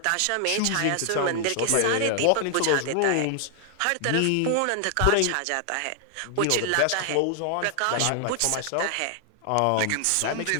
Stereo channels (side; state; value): both; different; correlation 0.00